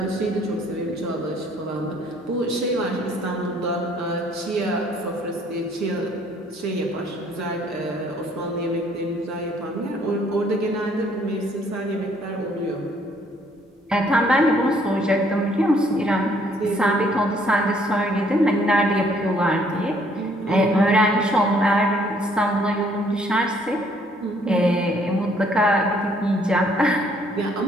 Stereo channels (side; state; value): both; normal; correlation 0.63